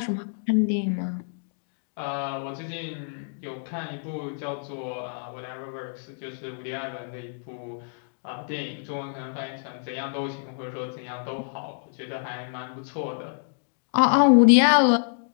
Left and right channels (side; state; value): right; silent; digital silence